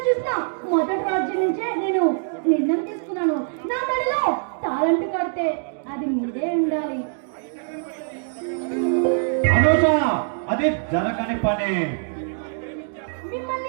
చూసిన మొదటి రోజు నుంచే నేను నిర్ణయం తీసుకున్నాను. నా మెడలో తాళంటు కడితే అది మీదే ఉండాలి. అనూష, అది జరగని పని.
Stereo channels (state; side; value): silent; left; digital silence